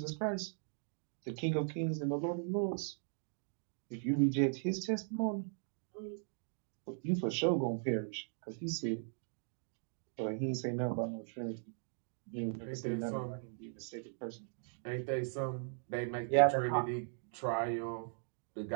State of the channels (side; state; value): left; silent; digital silence